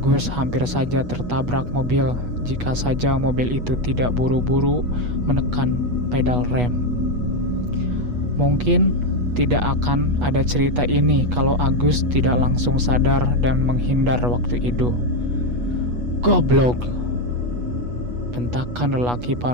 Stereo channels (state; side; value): late; left; 8.2 ms